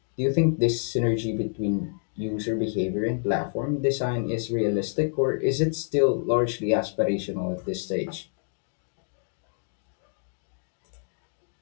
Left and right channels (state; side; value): silent; right; digital silence